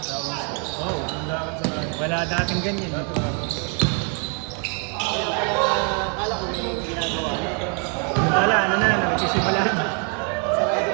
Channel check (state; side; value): quieter; left; 39.1 dB